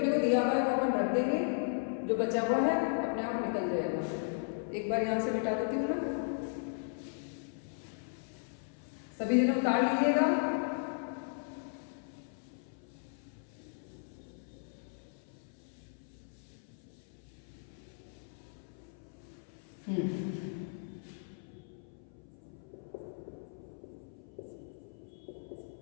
को दिया हुआ है वो अपन रख देंगे, जो बचा हुआ है अपने आप निकल जाएगा। एक बार यहां से मिटा देती हूँ ना, सभी जने उतार लीजिएगा।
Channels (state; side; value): silent; right; 53 dB below the other